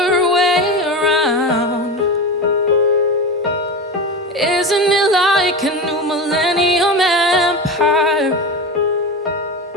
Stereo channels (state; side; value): normal; both; correlation 0.23